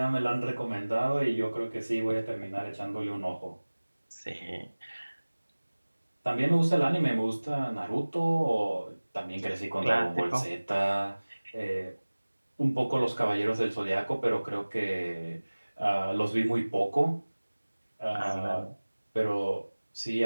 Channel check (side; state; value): both; inverted; correlation -1.00